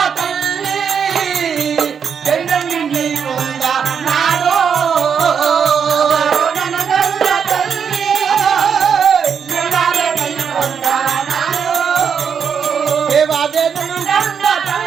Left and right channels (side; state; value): left; quieter; 7.0 dB